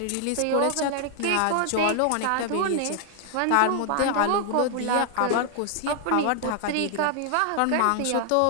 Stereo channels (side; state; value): both; different; correlation 0.00